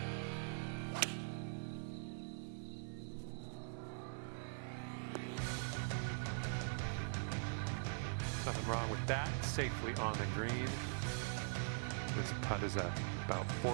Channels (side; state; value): left; silent; digital silence